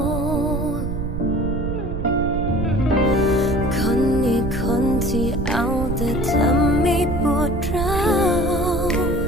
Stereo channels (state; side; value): noise; right; rumble, 4 dB below the sound